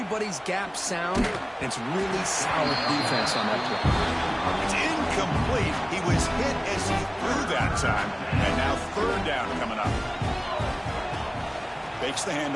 gap sound. It's really solid defense on that play. It's incomplete. He was hit as he threw that time. And now third down coming up. Fakes the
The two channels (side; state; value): both; identical; correlation 1.00